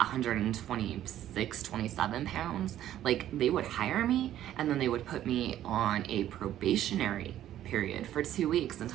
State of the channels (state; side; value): quieter; left; 12.2 dB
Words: 27 pounds, like, they would hire me and then they would put me on a probationary period for 2 weeks and